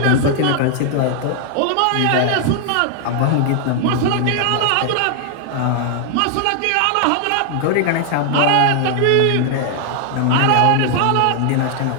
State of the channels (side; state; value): both; different; correlation 0.00